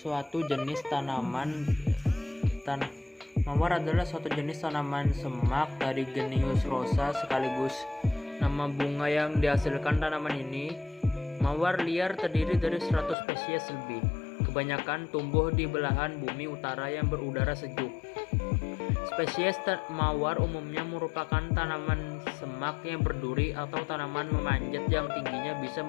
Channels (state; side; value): drops out; right; at 13.2 s